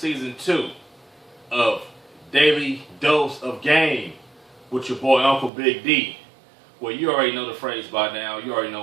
2 of Daily Dose of Game with your boy Uncle Big D. Well, you already know the phrase by now. You already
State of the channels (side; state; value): left; drops out; at 5.5 s